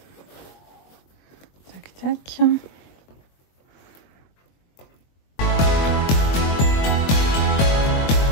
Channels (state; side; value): late; right; 22 ms